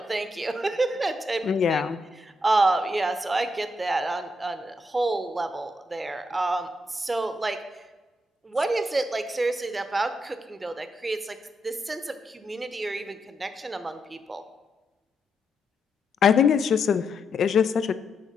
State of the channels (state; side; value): normal; both; correlation 0.81